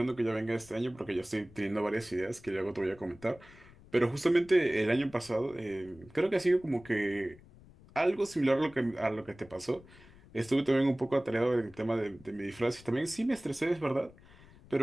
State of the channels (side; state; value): left; noise; rumble, 23 dB below the sound